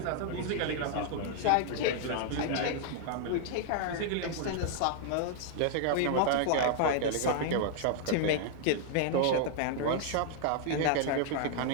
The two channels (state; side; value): different; both; correlation 0.00